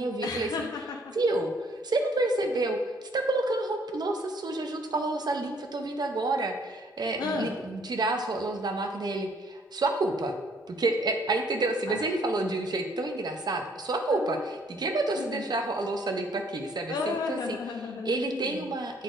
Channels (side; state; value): both; normal; correlation 0.63